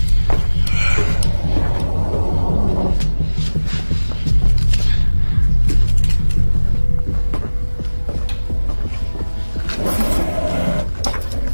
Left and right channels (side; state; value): both; inverted; correlation -1.00